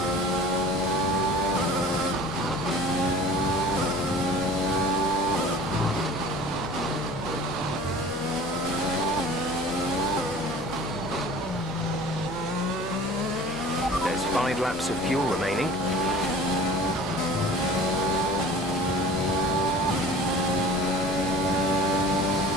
There's 5 laps of fuel remaining.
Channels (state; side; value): noise; left; hum, 19 dB below the sound